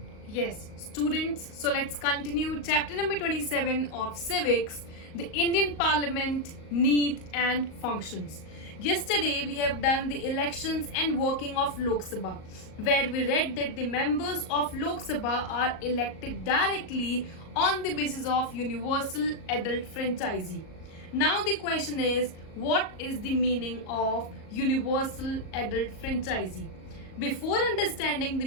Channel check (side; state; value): right; late; 38 ms